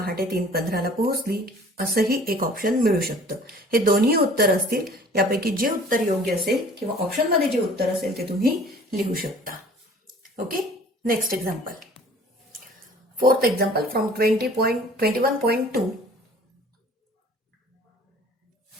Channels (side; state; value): both; normal; correlation 0.49